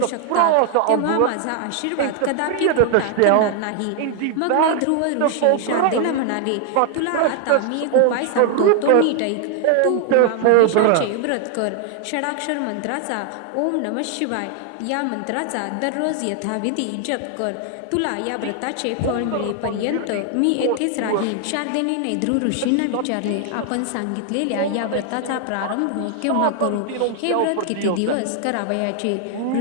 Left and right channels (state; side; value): different; both; correlation 0.00